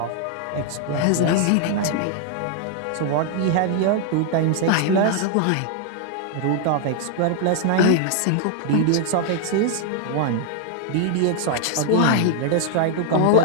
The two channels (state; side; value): different; both; correlation 0.00